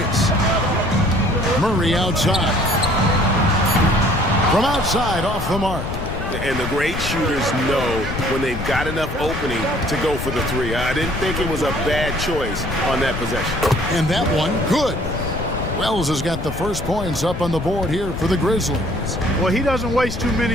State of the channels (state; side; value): noise; left; rumble, 6 dB below the sound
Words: Murray outside. From outside off the mark. And the great shooters know when they've got enough opening to go for the three. I didn't think it was a bad choice on that possession. And that one, good. Wells has got the first points up on the board here for the Grizzlies. Well, he doesn't waste too